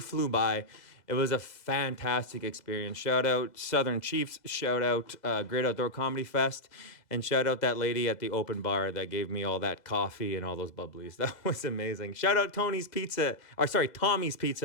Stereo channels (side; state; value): right; late; 2.0 ms